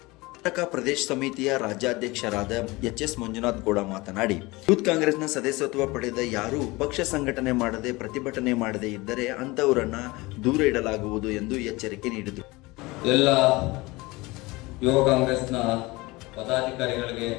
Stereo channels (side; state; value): right; quieter; 22.5 dB